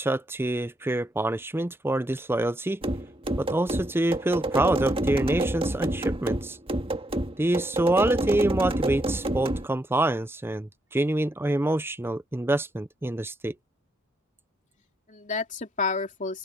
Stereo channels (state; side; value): normal; both; correlation 0.77